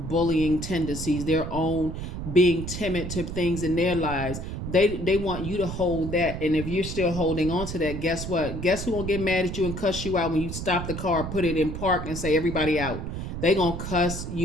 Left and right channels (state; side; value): noise; right; rumble, 6 dB below the sound